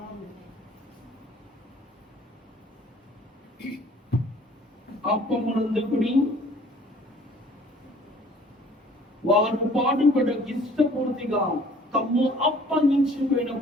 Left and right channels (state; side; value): normal; both; correlation 0.54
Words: అప్పమునందుకుని వారు పాటుపడ ఇష్టపూర్తిగా తమ్ము